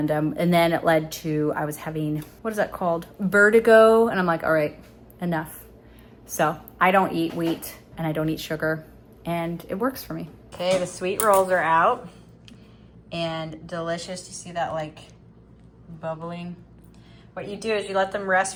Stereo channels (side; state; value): both; identical; correlation 1.00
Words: then it led to, I was having, what is that called? Vertigo. And I'm like, all right, enough. So I don't eat wheat and I don't eat sugar and it works for me. Okay, the sweet rolls are out and delicious. You see that like bubbling? What you do is you let them rest